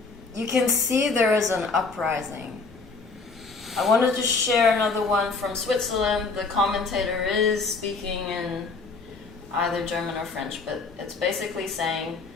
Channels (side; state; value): right; quieter; 4.3 dB